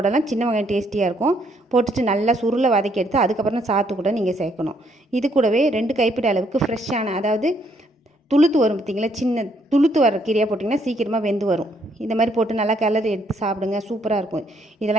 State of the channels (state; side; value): normal; both; correlation 0.70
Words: சின்ன வெங்காயம் டேஸ்டியாக இருக்கும். போட்டுட்டு நல்லா சுருளை வதக்கி எடுத்து அதுக்கப்புறம் சாத்து கூட நீங்கள் சேர்க்கணும். இது கூடவே 2 கைப்பிடி அளவுக்கு ஃப்ரெஷ்ஷான, அதாவது துளுத்து வரும் பார்த்திங்களா, சின்ன துளுத்து வர கீரையாக போட்டிங்கன்னா சீக்கிரமாக வெந்து வரும். இந்த மாதிரி போட்டு நல்லா கிளறி எடுத்து சாப்பிடுங்க. சூப்பராக இருக்கும்.